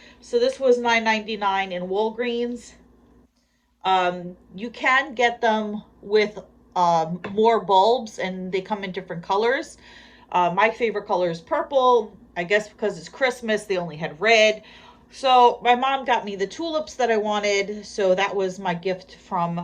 so this was $9.99 in Walgreens. You can get them with more bulbs, and they come in different colors. My favorite color is purple. I guess because it's Christmas, they only had red. So my mom got me the tulips that I wanted, so that was my gift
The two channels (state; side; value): identical; both; correlation 1.00